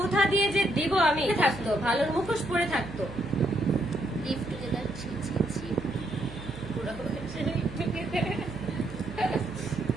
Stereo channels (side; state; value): right; noise; hum, 14 dB below the sound